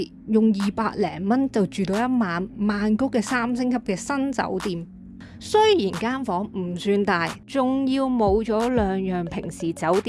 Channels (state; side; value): identical; both; correlation 1.00